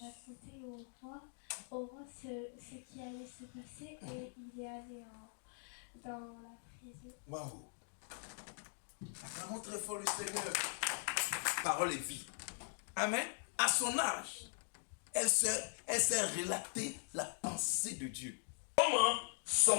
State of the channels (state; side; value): silent; right; digital silence